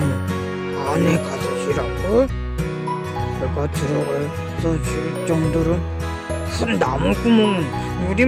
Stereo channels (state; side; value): identical; both; correlation 1.00